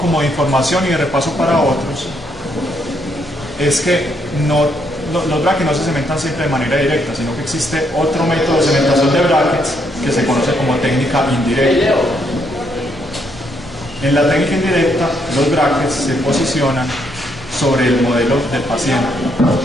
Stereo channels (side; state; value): left; noise; hum, 22 dB below the sound